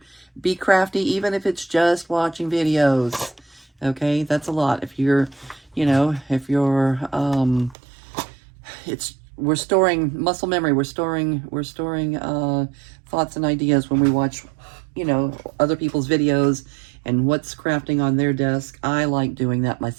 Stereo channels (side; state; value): left; drops out; at 7.8 s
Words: be crafty, even if it's just watching videos. Okay, that's a lot. If you're, we're storing muscle memory. We're storing thoughts and ideas when we watch, other people's videos and what's crafting on their desk. I like doing that